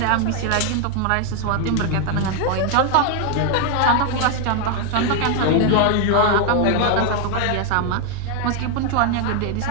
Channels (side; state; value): both; different; correlation 0.00